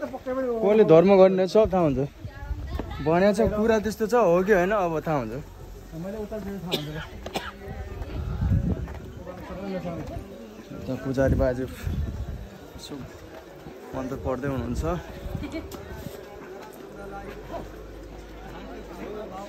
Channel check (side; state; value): both; identical; correlation 1.00